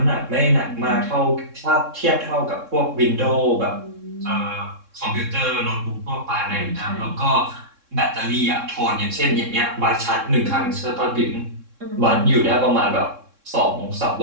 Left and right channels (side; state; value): left; late; 3.6 ms